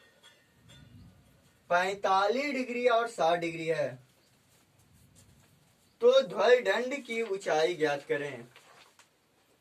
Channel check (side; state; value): both; identical; correlation 1.00